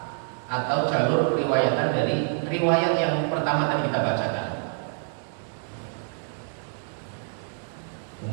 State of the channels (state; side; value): silent; left; 60 dB below the other